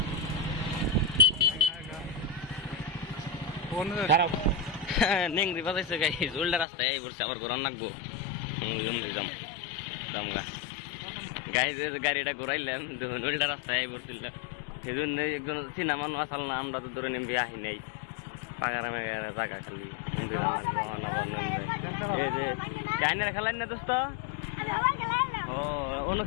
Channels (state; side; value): drops out; right; at 6.7 s